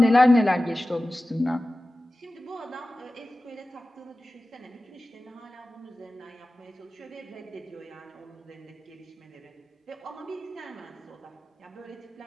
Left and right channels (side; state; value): both; normal; correlation 0.96